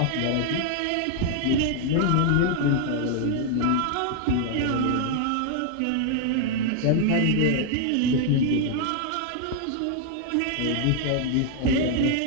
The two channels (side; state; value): both; different; correlation 0.00